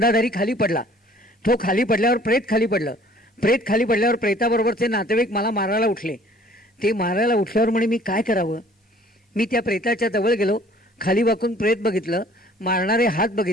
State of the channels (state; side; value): normal; both; correlation 0.54